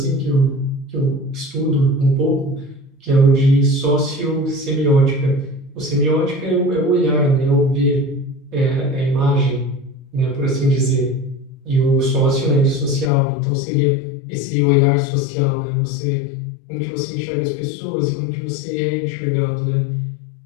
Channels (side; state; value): right; drops out; at 13.1 s